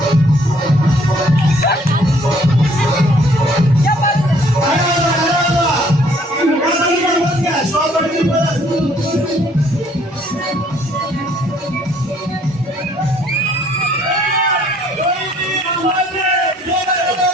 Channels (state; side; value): normal; both; correlation 0.62